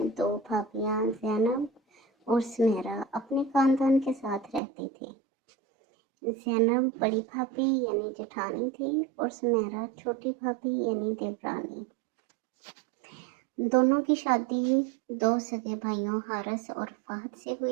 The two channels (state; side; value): drops out; left; at 4.6 s